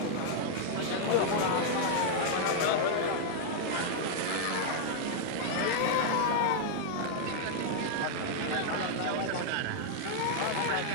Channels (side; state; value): both; different; correlation -0.01